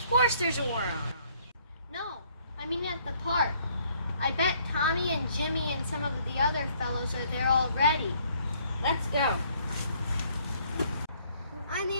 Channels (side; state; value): both; inverted; correlation -0.64